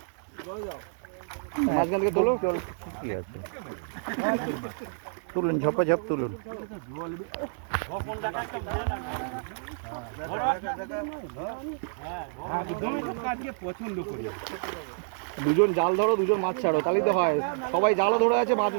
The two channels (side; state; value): left; silent; 59 dB below the other